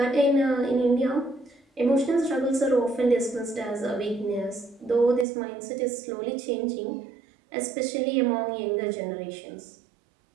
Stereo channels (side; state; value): left; drops out; at 5.2 s